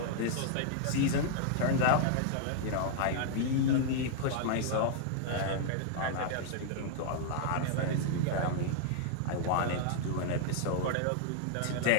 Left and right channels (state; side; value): different; both; correlation -0.01